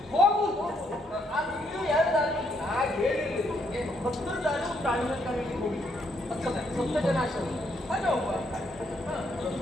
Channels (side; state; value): both; normal; correlation 0.73